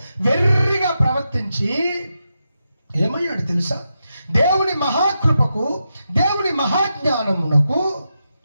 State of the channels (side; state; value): both; inverted; correlation -0.87